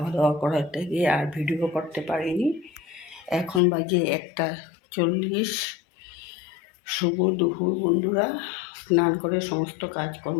দাওয়া করাতে গিয়ে আর ভিডিও করতে পারিনি এখন বাজে 1:40 শুভ দুপুর বন্ধুরা স্নান করে সমস্ত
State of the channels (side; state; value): right; drops out; at 3.6 s